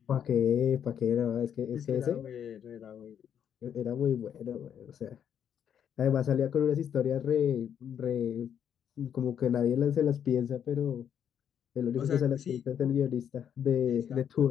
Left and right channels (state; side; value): quieter; right; 8.7 dB